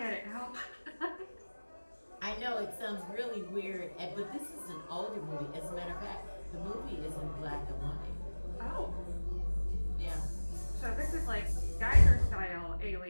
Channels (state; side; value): inverted; both; correlation -1.00